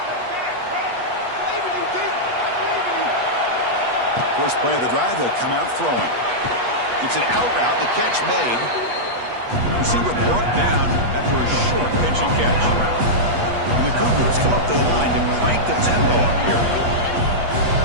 First play of the drive, they'll come out throwing. It's an out route, the catch made. Receiver brought down after a short pitch and catch. And the Cougars come up to the line to crank the tempo up here.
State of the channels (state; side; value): late; left; 8.3 ms